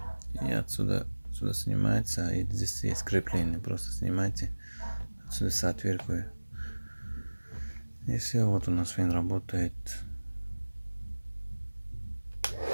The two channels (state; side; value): inverted; both; correlation -1.00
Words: И отсюда снимается. И здесь есть крепление. Просто снимайте. Отсюда с отвертку. И все, вот у нас фен работает.